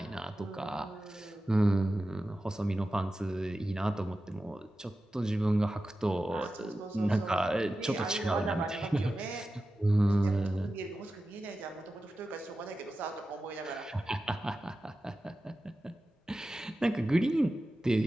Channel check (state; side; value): normal; both; correlation 0.93